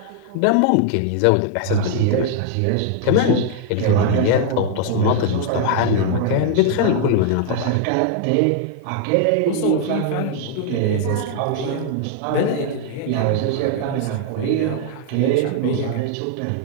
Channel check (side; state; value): both; different; correlation 0.00